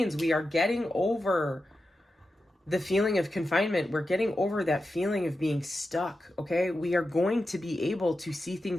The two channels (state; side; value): normal; both; correlation 0.91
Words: we are getting over the feeling of confinement. We're getting over that feeling of being stuck, okay? We are going to be able to see